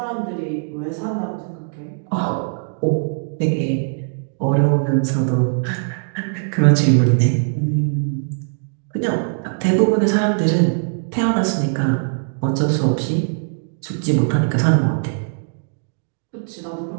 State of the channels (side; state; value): left; silent; 65 dB below the other